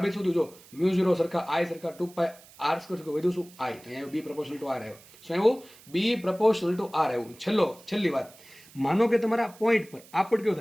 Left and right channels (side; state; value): right; noise; hiss, 23 dB below the sound